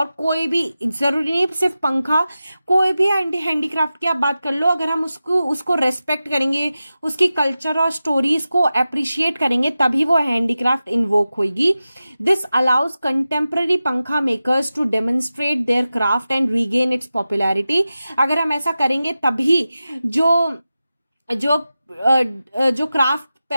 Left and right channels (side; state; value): both; inverted; correlation -0.94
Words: कोई भी, जरूरी नहीं सिर्फ पंखा, कोई भी हैंडीक्राफ्ट की आप बात कर लो, अगर हम उसको रेस्पेक्ट करेंगे, उसकी कल्चर और स्टोरीज को अप्रिशिएट करेंगे, तभी वो हैंडीक्राफ्ट इन्वोक होगी. This allows contemporary pankha makers to demonstrate their craft and regain its popularity. अगर हम ऐसा करेंगे तभी जो